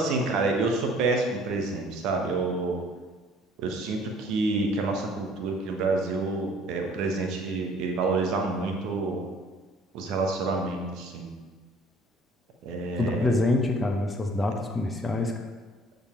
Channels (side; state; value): both; normal; correlation 0.54